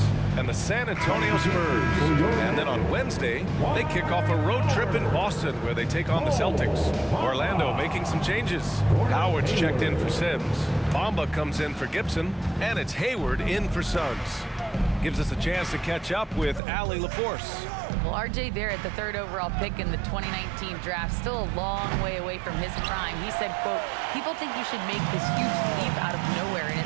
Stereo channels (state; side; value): drops out; left; at 16.6 s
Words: and the San Antonio Spurs. And then on Wednesday, they kick off a road trip in Boston where they take on the Celtics. Orlando making some changes. Howard's checked in for Sims. Bamba comes in for Gibson. And it's Hayward in for Suggs. Gives us a chance to catch up with Allie LaForce. Well, RJ Barrett, the 3rd overall pick in the 2019 draft, still a long way away from his prime. He said, quote, "People think you should make this huge leap out of nowhere, and